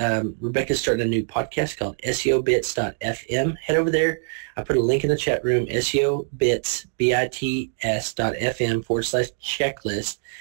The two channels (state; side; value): silent; left; 63 dB below the other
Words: Rebecca's starting a new podcast called SEObits.fm. Head over there. I put a link in the chat room, SEObits, bits.fm/checklist.